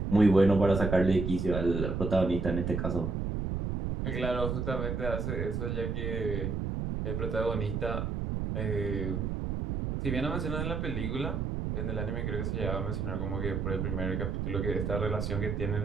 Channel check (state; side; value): noise; right; rumble, 1 dB below the sound